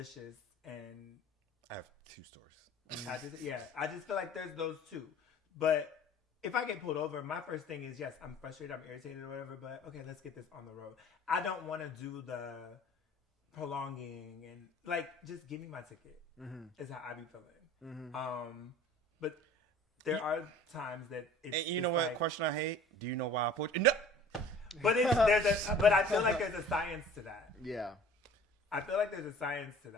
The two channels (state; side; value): normal; both; correlation 0.47